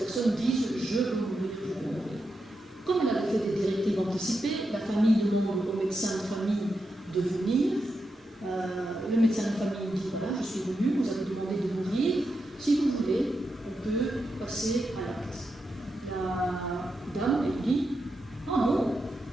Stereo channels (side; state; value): both; normal; correlation 0.86